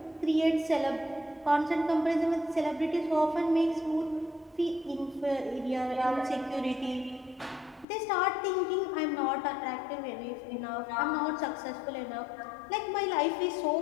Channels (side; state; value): right; drops out; at 7.9 s